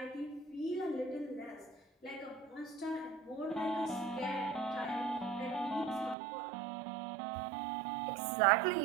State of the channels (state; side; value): drops out; left; at 6.2 s